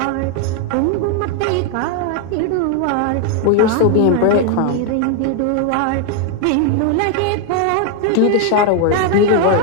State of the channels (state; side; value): different; both; correlation 0.00